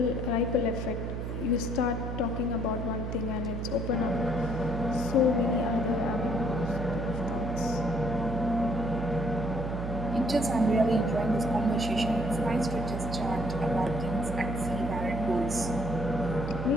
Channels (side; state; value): right; noise; hum, 4 dB below the sound